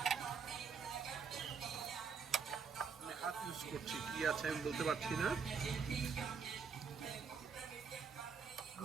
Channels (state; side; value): quieter; left; 5.8 dB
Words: আমি হাত ইউজ করছি, কি আছে আমি বলতে পারছি না।